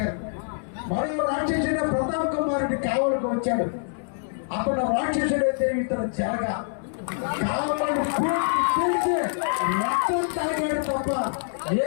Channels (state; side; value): silent; right; digital silence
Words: మరో రాక్షసుడైన ప్రతాప్ కుమార్ రెడ్డి కావలికి వచ్చాడు. అప్పుడు రాక్షసుడైతే ఇతను జరగా కావలిని పూర్తి మొత్తం తాగాడు తప్ప ఏ